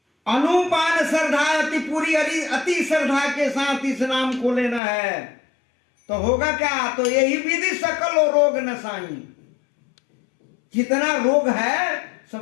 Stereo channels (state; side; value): drops out; right; at 4.8 s